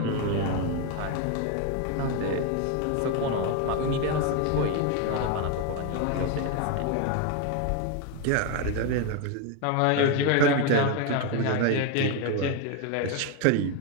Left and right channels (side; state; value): both; different; correlation 0.02